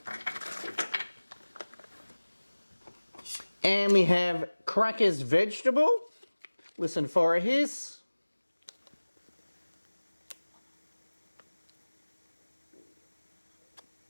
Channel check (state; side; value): inverted; both; correlation -1.00